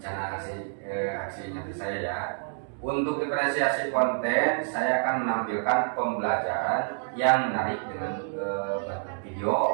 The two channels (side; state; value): left; silent; digital silence